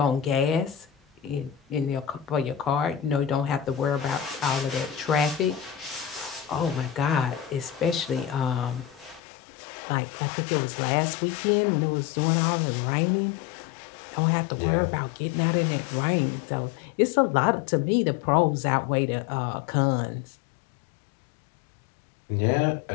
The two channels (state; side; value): drops out; right; at 9.2 s